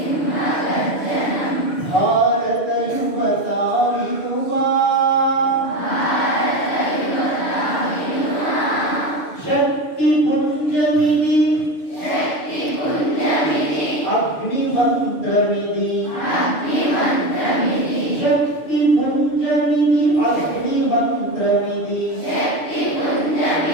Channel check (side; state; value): right; late; 6.7 ms